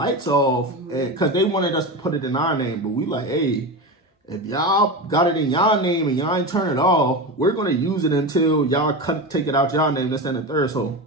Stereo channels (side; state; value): both; normal; correlation 0.22